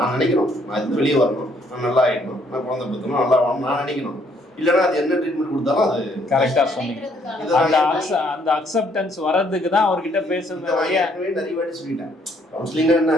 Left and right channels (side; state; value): both; normal; correlation 0.67